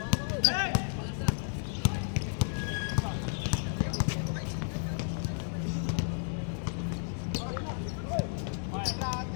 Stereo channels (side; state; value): right; silent; digital silence